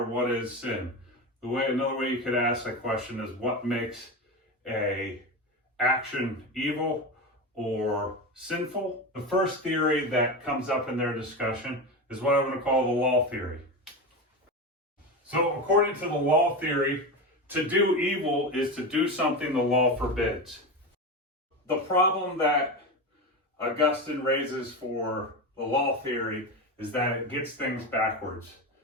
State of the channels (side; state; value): both; normal; correlation 0.21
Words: what is sin? Another way you could ask that question is, what makes a action evil or sinful? The first theory that comes up in their discussion is what I'm going to call the law theory. So according to the law theory, to do evil is to do something the law forbids. The problem that Augustine raises for the law theory is that it gets things backwards.